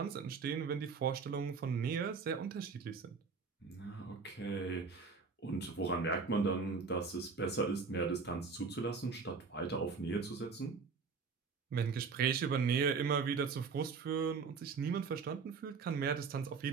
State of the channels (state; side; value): quieter; left; 5.1 dB